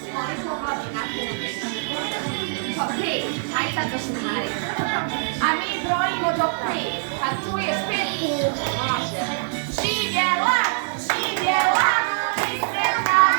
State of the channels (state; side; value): silent; left; digital silence